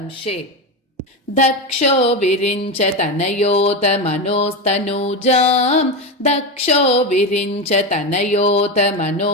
दक्षो विरिञ्च तनयोत मनोस्तनूजां दक्षो विरिञ्च तनयोत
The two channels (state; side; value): normal; both; correlation 0.16